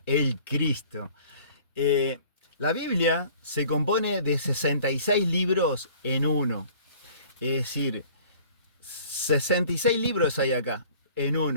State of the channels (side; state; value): both; inverted; correlation -0.50